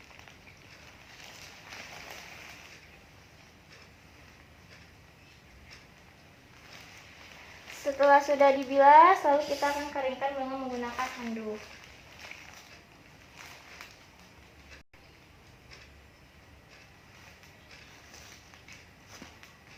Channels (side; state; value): both; identical; correlation 1.00